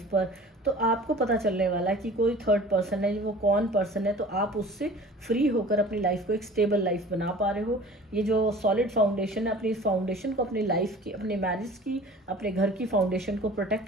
पर। तो आपको पता चलने वाला है कि कोई थर्ड पर्सन है, वो कौन पर्सन है, तो आप उससे फ्री होकर अपनी लाइफ को एक स्टेबल लाइफ बना पा रहे हो। ये जो सॉलिड फाउंडेशन है, अपनी इस फाउंडेशन को अपनी लाइफ की, अपने मैरिज की, अपने घर की फाउंडेशन को प्रोटेक्ट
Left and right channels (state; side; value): normal; both; correlation 0.44